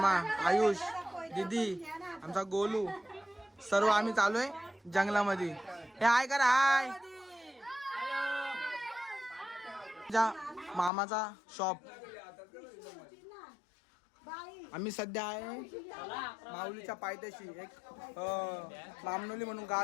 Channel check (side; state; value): right; drops out; at 10.9 s